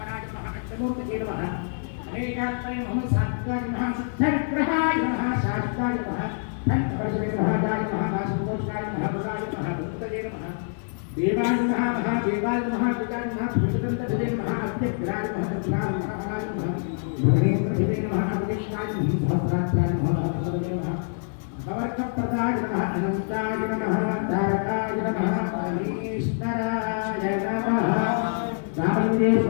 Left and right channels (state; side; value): silent; right; digital silence